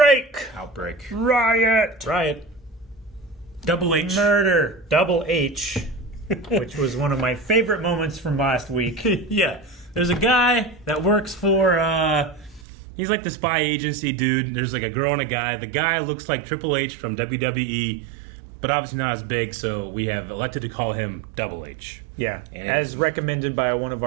Riot. Double H. Murder. Double H. Which was one of my favorite moments from last week. Yeah. There's a guy that works for, he's like the spy agency dude. There's like a girl and a guy. The guy looks like Triple H from WWE, but obviously not as big, so we have elected to call him Double H. Yeah, as recommended by one of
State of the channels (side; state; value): left; drops out; at 12.7 s